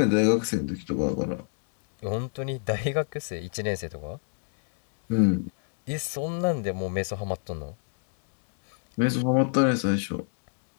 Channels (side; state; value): right; silent; digital silence